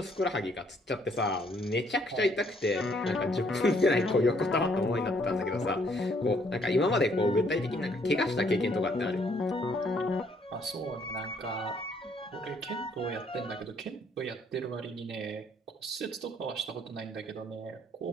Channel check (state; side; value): normal; both; correlation 0.66